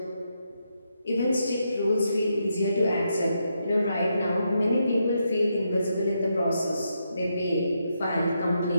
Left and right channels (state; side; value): inverted; both; correlation -0.81